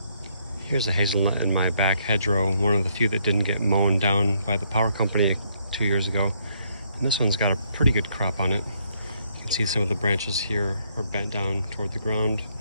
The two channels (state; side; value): inverted; both; correlation -0.71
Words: Here's a hazelnut in my back hedgerow, one of the few that didn't get mown down by the power company 2 years ago. And this one's got a pretty good crop on it. You can see some of the branches here are bent down toward the ground,